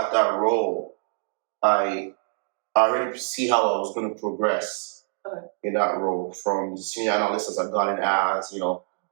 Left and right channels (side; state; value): left; silent; digital silence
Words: that role, I already see how I was going to progress in that role from the senior analyst as I got in as,